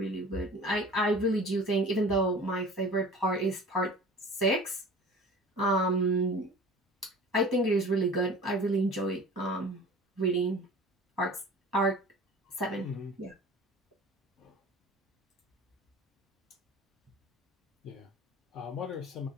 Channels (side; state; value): both; normal; correlation 0.41